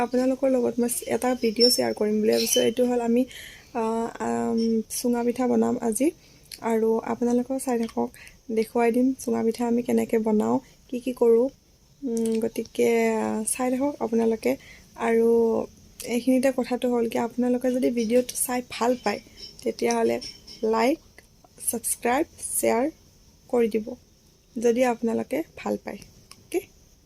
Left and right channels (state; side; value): identical; both; correlation 1.00